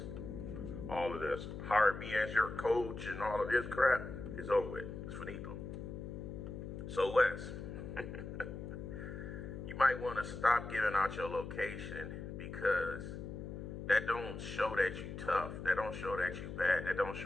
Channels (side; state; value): left; noise; hum, 8 dB below the sound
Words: all of this, hire me as your coach and all of this crap is over with. It's finito. So Wes, you might want to stop giving out your location because that don't show that you tough. That don't show that you bad. That don't